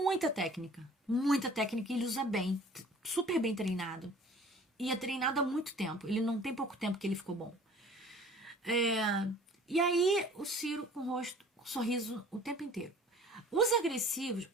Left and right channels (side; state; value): both; normal; correlation 0.49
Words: técnica, e ele usa bem, super bem treinado. E é treinado há muito tempo, ele não tem pouco tempo que ele ficou bom. E aí o Ciro com o rosto, com sorriso o tempo inteiro. Os agressivos,